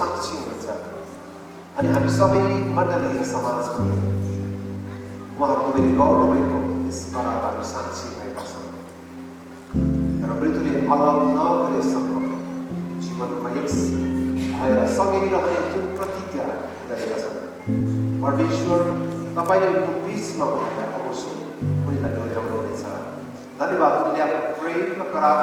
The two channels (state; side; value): identical; both; correlation 1.00